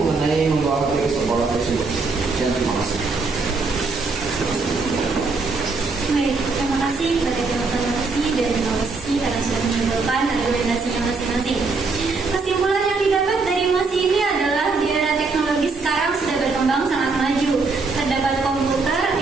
membawa HP ke sekolah tersebut. Dan terima kasih. Baik, terima kasih kepada tim oposisi dan tim oposisi karena sudah menyimpulkan argumentasinya masing-masing. Kesimpulan yang didapat dari mosi ini adalah di era teknologi sekarang sudah berkembang sangat maju. Terdapat komputer,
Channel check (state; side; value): quieter; left; 4.1 dB